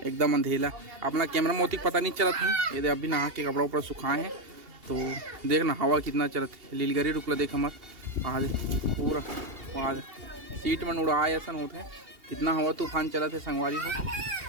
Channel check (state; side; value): late; left; 2.8 ms